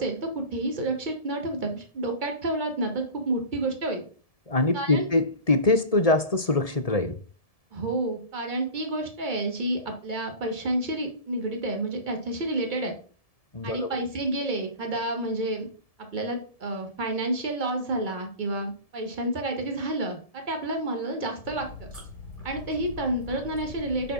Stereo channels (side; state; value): right; late; 1.7 ms